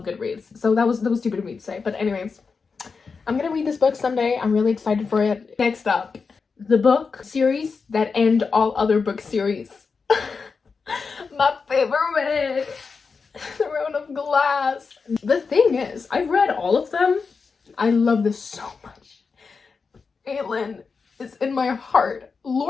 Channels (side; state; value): right; quieter; 5.0 dB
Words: Goodreads, so that was stupid of me to say. But anyways, I'm gonna read this book someday. I'm really excited for it. Next up, the book series that end all other book series. My favorite, Throne of Glass. The thing is, I've read all of them. I love this so much. Aelin is in my heart.